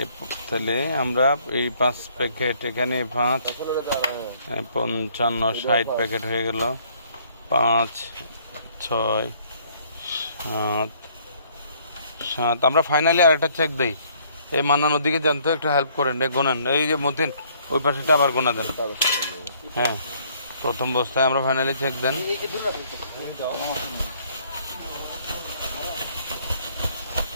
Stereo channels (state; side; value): inverted; both; correlation -0.63